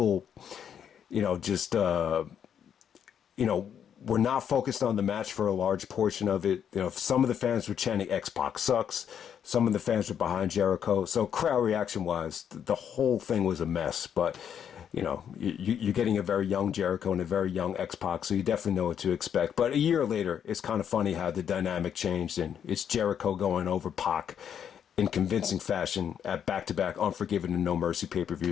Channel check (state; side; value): quieter; right; 8.6 dB